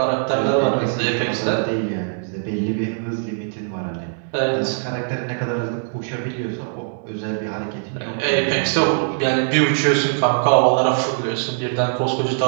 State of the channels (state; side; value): silent; left; digital silence